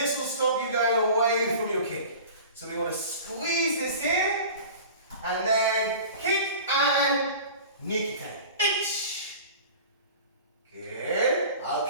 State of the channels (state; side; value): inverted; both; correlation -0.39